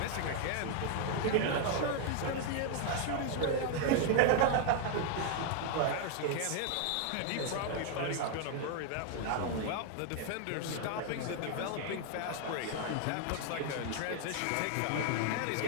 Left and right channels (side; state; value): both; different; correlation 0.00